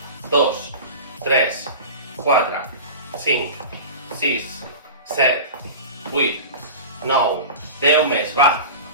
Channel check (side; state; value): both; inverted; correlation -0.32